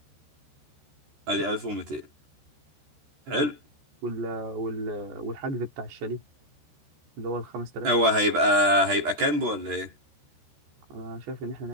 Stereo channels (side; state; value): left; late; 13 ms